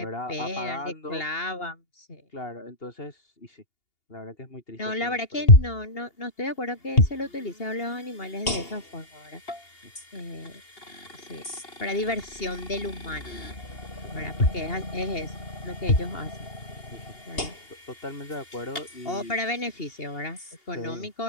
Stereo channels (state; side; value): late; right; 2.8 ms